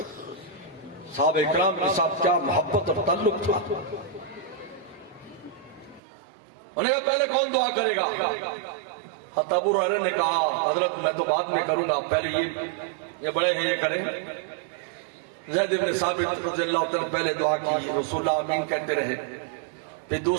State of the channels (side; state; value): left; drops out; at 6.0 s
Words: صحابہ اکرام کے ساتھ، کیا محبت اور تعلق تھا۔ انہوں نے کہا پہلے کون دعا کرے گا؟ ابو ہریرہ نے کہا حضرت میں تو بعد میں کروں گا، پہلے یہ بڑے ہیں یہ کریں۔ زید بن ثابت رضی اللہ عنہ پہلے دعا کی، رسول اللہ آمین کہتے رہے، پھر